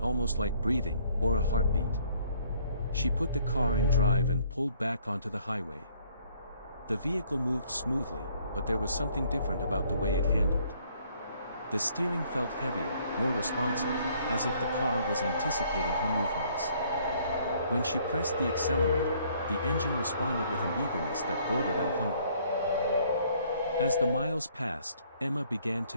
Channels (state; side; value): inverted; both; correlation -0.63